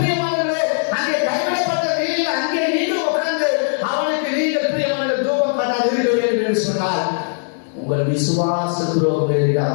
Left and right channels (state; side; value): silent; right; digital silence